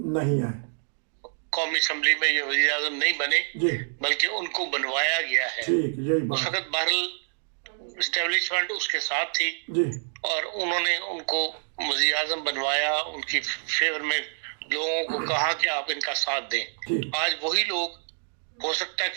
نہیں آئے، قومی اسمبلی میں یہ وزیر اعظم نہیں بنے، جی بلکہ ان کو بنوایا گیا ہے. ٹھیک، یہی اس بات. وقت بہرحال اسٹیبلشمنٹ اس کے ساتھ تھی جی اور انہوں نے ان کو وزیر اعظم بنوایا، ان کی فیور میں لوگوں کو کہا کہ آپ ان کا ساتھ دیں. ٹھیک، آج وہی لوگ ہو سکتا ہے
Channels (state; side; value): silent; left; digital silence